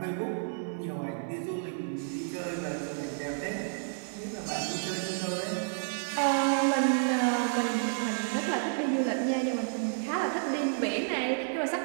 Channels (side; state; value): left; silent; 57 dB below the other